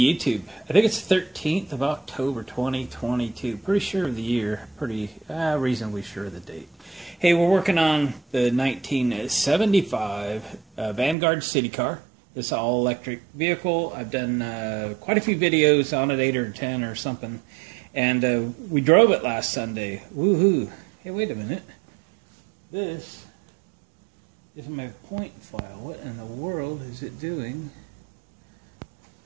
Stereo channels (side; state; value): left; drops out; at 11.2 s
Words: I think it's 13th of October, 2022. Pretty sure of the year. Pretty reasonably sure of the date. Hey, we're working on the 1975 Vanguard Citicar. This all-electric vehicle. I've done quite a few videos on it, 8 or 10 or something. And we drove it last Sunday. Woohoo! Hey, wait a minute. This is my point file. What in the world is it doing?